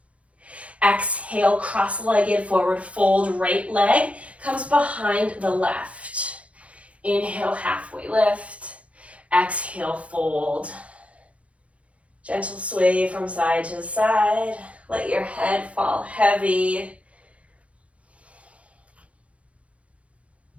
Exhale, cross-legged forward fold, right leg comes behind the left. Inhale, halfway lift. Exhale, fold. Gentle sway from side to side. Let your head fall heavy.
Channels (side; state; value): left; late; 0.064 ms